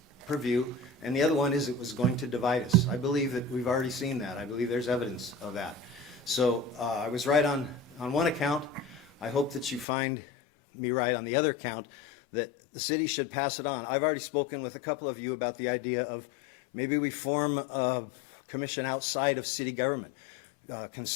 purview, and the other one is it was going to divide us. I believe that we've already seen that. I believe there's evidence of that. So I was right on one account. I hope that you find me right on the other account, that the city should pass it on. I've already spoken with a couple of you about the idea of maybe we form a commission outside of city government.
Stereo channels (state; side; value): drops out; right; at 9.9 s